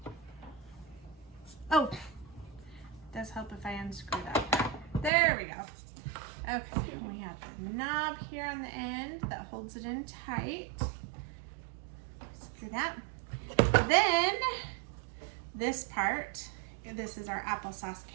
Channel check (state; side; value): drops out; left; at 5.1 s